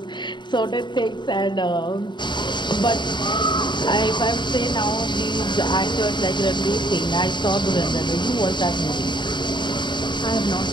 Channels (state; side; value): late; right; 0.22 ms